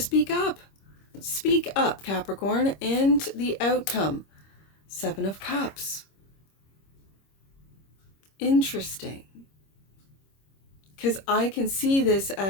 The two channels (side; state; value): right; late; 26 ms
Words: up. Speak up, Capricorn. And the outcome, Seven of Cups. Interesting, because I can see this